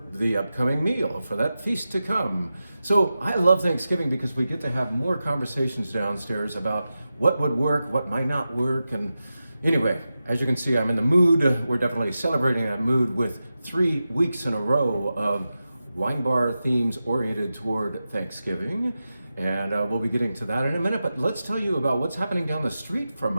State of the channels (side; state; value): both; inverted; correlation -0.92